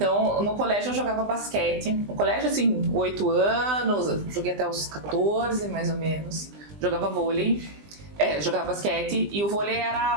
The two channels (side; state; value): left; late; 20 ms